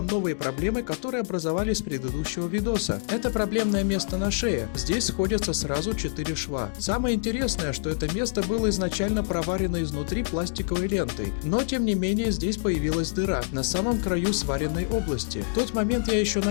новые проблемы, которые образовались с предыдущего видоса. Это проблемное место на шее. Здесь сходятся сразу 4 шва. Самое интересное, что это место было изначально проварено изнутри пластиковой лентой, но тем не менее здесь появилась дыра на самом краю сваренной области. В тот момент я еще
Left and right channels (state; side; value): silent; right; digital silence